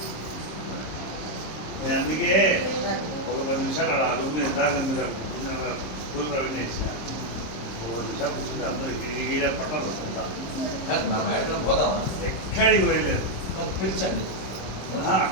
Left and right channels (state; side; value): late; right; 26 ms